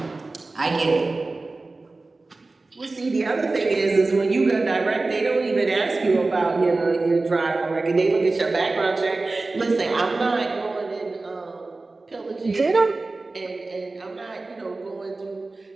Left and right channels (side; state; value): left; quieter; 3.4 dB